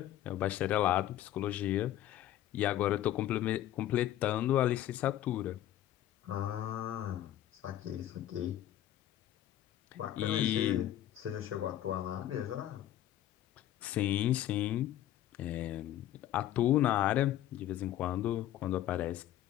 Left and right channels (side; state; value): right; quieter; 12.9 dB